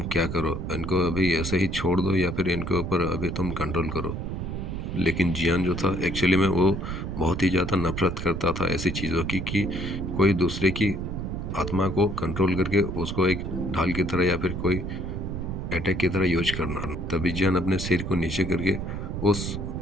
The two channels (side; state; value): right; noise; rumble, 4 dB below the sound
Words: क्या करो, इनको अभी ऐसे ही छोड़ दो या फिर इनके ऊपर अभी तुम कंट्रोल करो। लेकिन जियान जो था एक्चुअली में वो बहुत ही ज़्यादा नफरत करता था ऐसी चीज़ों की, कि कोई दूसरे की आत्मा को कंट्रोल करके उसको एक ढाल की तरह या फिर कोई अटैक की तरह यूज करना। तभी जियान अपने सिर को नीचे करके उस